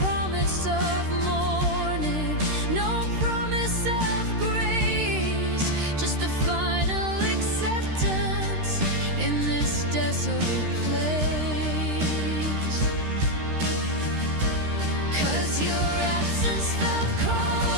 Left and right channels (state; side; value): late; left; 13 ms